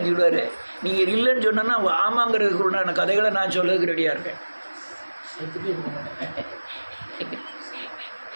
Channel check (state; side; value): inverted; both; correlation -1.00